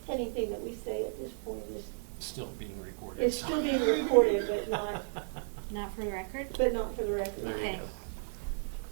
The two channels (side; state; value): left; silent; 55 dB below the other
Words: Anything that we say at this point is, Still being recorded. is still being recorded, but not, Not for the record? but not for the record. There you Okay. go.